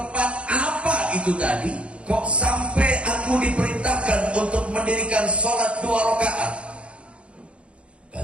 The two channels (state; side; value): late; left; 0.059 ms